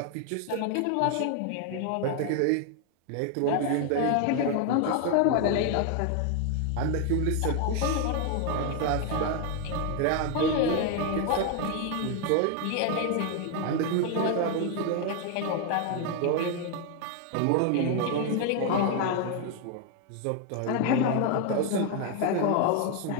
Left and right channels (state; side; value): different; both; correlation 0.01